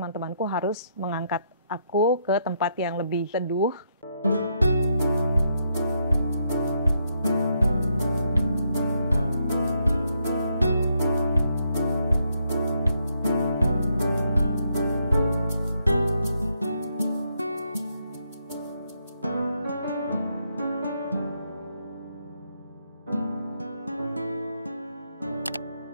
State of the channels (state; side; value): inverted; both; correlation -0.77